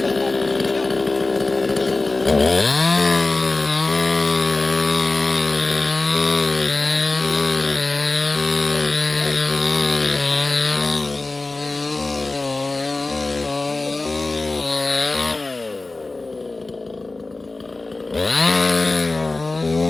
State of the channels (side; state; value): right; quieter; 3.3 dB